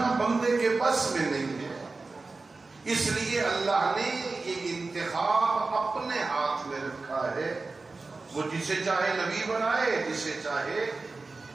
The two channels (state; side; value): quieter; left; 3.7 dB